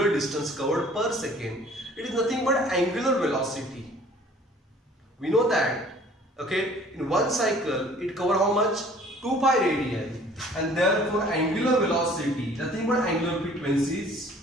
distance covered per second. It is nothing but angular velocity. We know that, okay, in one cycle it covers how much? 2 pi radian, and therefore angular velocity, nothing but angular frequency is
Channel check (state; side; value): normal; both; correlation 0.53